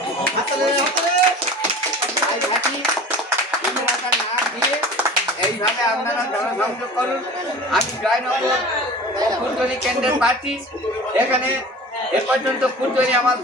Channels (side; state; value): both; normal; correlation 0.39